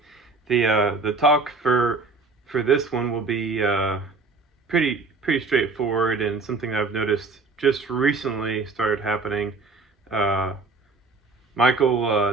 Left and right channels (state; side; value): quieter; left; 3.9 dB